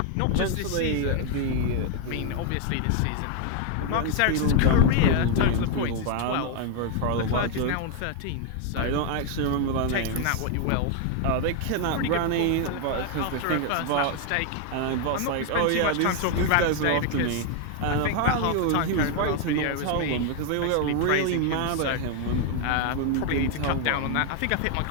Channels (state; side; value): different; both; correlation 0.00